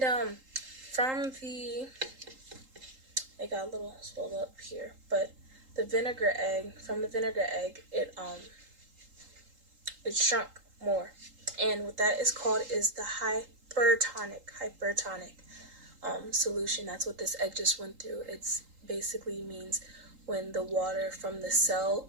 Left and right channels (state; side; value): late; left; 3.8 ms